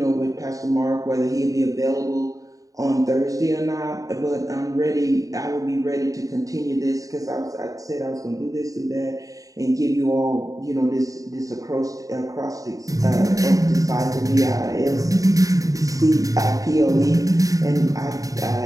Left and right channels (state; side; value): late; left; 0.17 ms